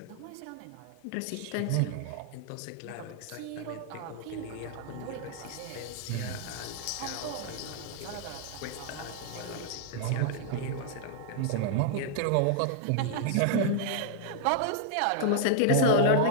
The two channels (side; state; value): both; different; correlation -0.01